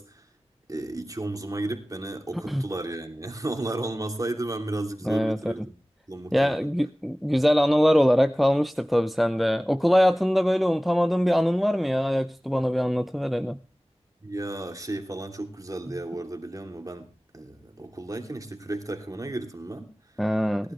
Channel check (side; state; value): both; normal; correlation 0.97